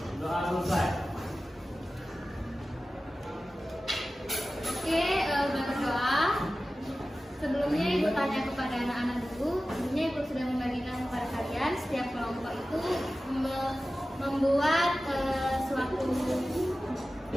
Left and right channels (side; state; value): both; normal; correlation 0.95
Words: Doa selesai. Oke, udah berdoa. Sebelumnya Ibu tanya kepada anak-anak dulu. Sebelumnya Ibu sudah membagikan kepada kalian setiap kelompok itu membuat suatu